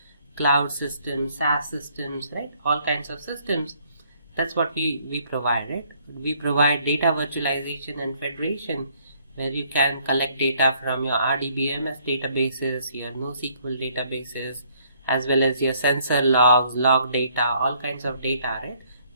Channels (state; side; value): inverted; both; correlation -0.64